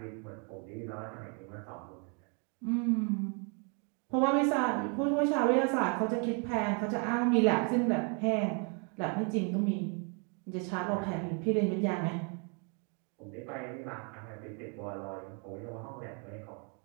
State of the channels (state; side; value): quieter; left; 37.0 dB